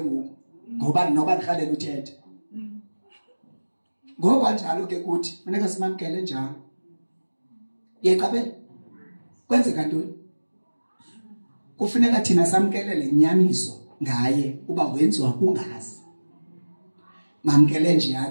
ngoku ngoba noba ndikhalela uthetha ngoba njalo ke kuthi funeka simamkele njalo yeqabe kwenzeka ntoni kufuneka thina samkelele inyaniso ngaye uba wenziwa kungazi mamkele nje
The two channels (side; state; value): both; inverted; correlation -1.00